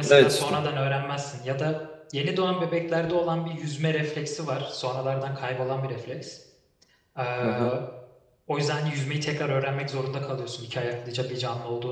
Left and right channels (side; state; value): both; identical; correlation 1.00